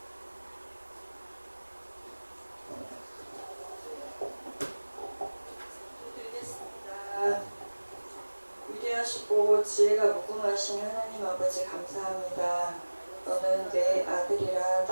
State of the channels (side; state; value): both; inverted; correlation -1.00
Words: 드리겠습니다. 위대하시고 지혜가 무궁하신 하나님 아버지 감사합니다. 너는 내 아들이라